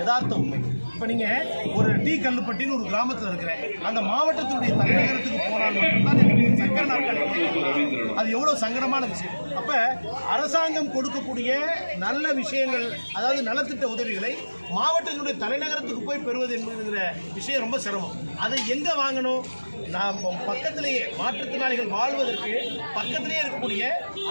உண்மை. இப்போ நீங்கள் ஒரு டி கல்லுப்பட்டின்னு ஒரு கிராமத்தில் இருக்கிற அந்த மாவட்டத்தினுடைய தலைநகரத்துக்கு போனால் மட்டும்தான் சக்கர நாட்கள் அது எவ்வளோ சங்கடமான விஷயம். அப்போ அரசாங்கம் கொடுக்கக்கூடிய நல்ல விஷயங்கள், அதாவது நலத்திட்ட உதவிகளை மாவட்டத்தினுடைய தலைநகரத்துக்கு போய் பெறுவது என்கிற விஷயம் ரொம்ப சிரமம். அதை எங்கே வாங்கணும்? நாம் பக்கத்திலேயே மாற்றுத்திறனாளிகள் வாழ்வதற்கு பக்கத்திலேயே இருக்கக்கூடிய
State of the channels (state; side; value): inverted; both; correlation -1.00